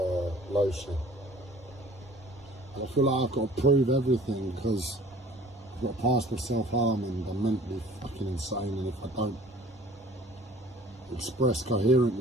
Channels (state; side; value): normal; both; correlation 0.50